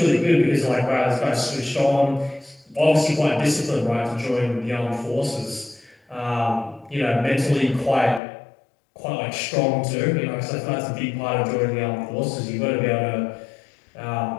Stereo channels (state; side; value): drops out; right; at 8.2 s